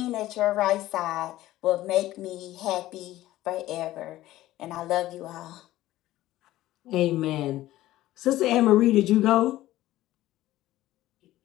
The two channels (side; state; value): right; quieter; 15.5 dB